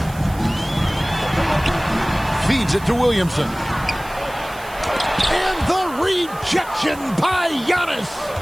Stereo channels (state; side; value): noise; right; hiss, 19 dB below the sound